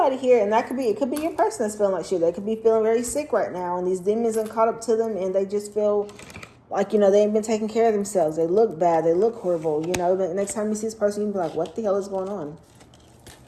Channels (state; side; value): identical; both; correlation 1.00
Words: here, and it could be your person that's feeling like shit. They could be feeling very sick right now, and these demons have caught up to them, and they just feel like, you know, they ain't been taking care of themselves. They look bad. They look horrible. You know, the next time you see this person, you can be like, what the hell is going on?